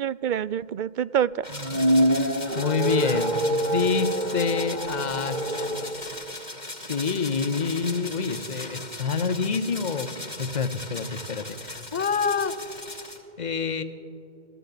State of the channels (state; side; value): late; left; 2.1 ms